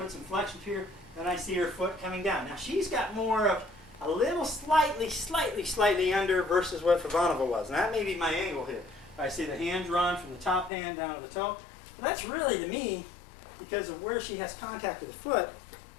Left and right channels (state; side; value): drops out; right; at 10.7 s